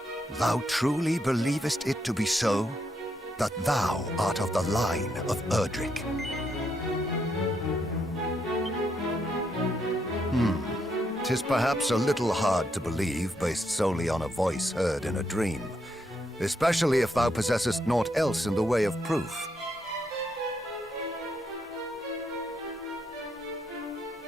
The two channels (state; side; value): normal; both; correlation 0.78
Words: Thou truly believest it to be so? That thou art of the line of Erdrick? 'Tis perhaps a little hard to believe based solely on a voice heard in a dream, especially if thou possessest naught else in the way of proof.